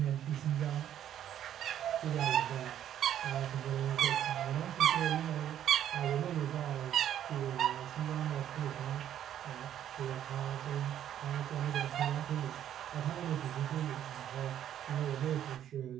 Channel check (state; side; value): quieter; left; 10.7 dB